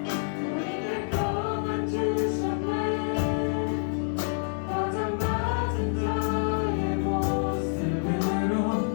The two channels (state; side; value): silent; right; digital silence